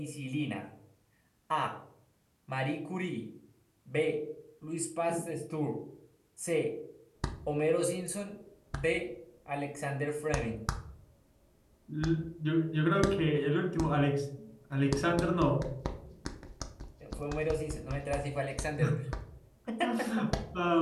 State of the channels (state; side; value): identical; both; correlation 1.00